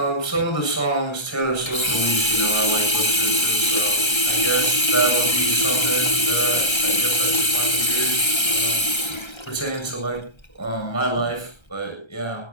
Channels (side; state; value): right; late; 1.3 ms